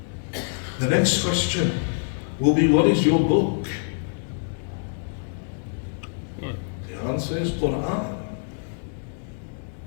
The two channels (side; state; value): right; silent; 61 dB below the other